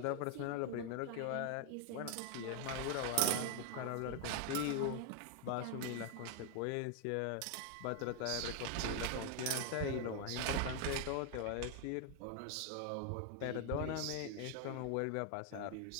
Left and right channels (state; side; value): different; both; correlation 0.00